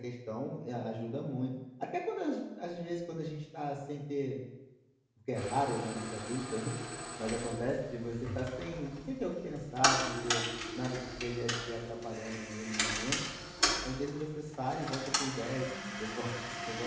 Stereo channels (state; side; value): identical; both; correlation 1.00